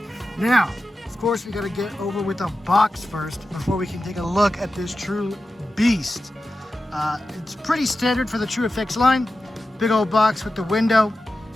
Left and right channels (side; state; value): both; normal; correlation 0.93